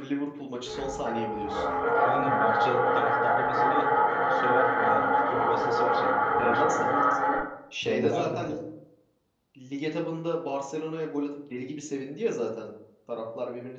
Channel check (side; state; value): both; identical; correlation 1.00